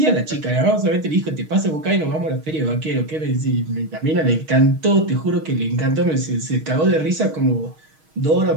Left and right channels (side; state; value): left; late; 6.4 ms